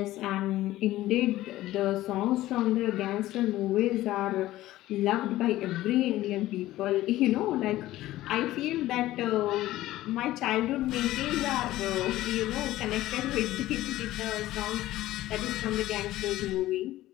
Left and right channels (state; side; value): quieter; right; 15.6 dB